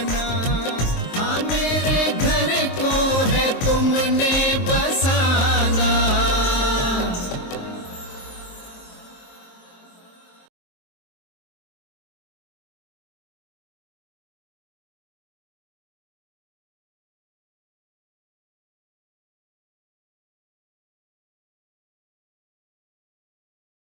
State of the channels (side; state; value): right; late; 23 ms